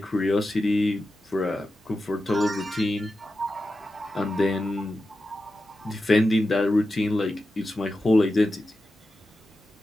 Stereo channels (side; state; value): both; normal; correlation 0.91